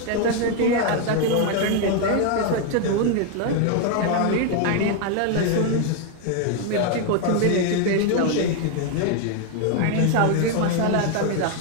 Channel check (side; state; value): both; different; correlation 0.00